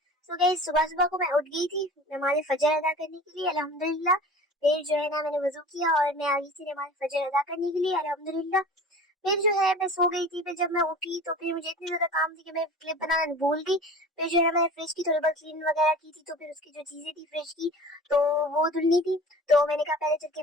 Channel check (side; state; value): both; normal; correlation 0.39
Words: So guys, सुबह सुबह को मैं उठ गई थी नमाज फजर अदा करने के लिए अल्हम्दुलिल्लाह। फिर जो है ना मैंने वजू किया और मैं आ गई थी नमाज फजर अदा करने के लिए अल्हम्दुलिल्लाह। फिर जो है मैं सो गई थी। फिर जब मैं उठी तो फिर मुझे इतनी ज्यादा काम थी कि मैं क्लिप बनाना भूल गई। फिर जो है मैंने फ्रिज की थोड़ी बहुत क्लीन वगैरह की थी, तो फिर उसकी जो चीजें थी फ्रिज की तो वो धुलनी थी। तो मैंने कहा पहले चल के